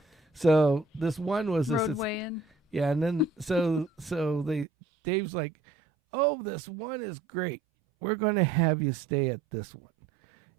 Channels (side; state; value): left; drops out; at 4.7 s